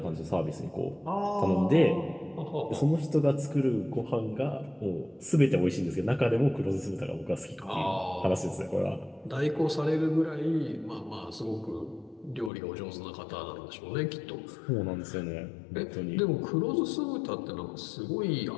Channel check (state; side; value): drops out; right; at 12.5 s